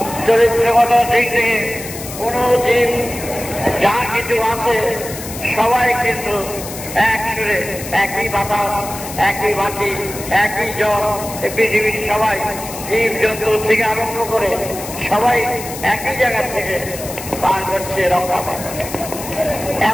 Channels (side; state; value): left; noise; hiss, 11 dB below the sound